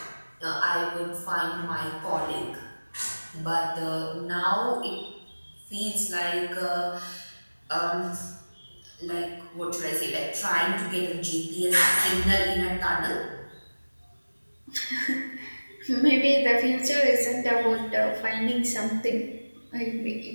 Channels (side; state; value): both; inverted; correlation -1.00